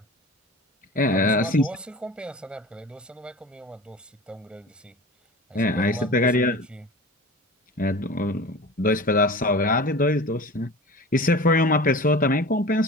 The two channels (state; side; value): normal; both; correlation 0.36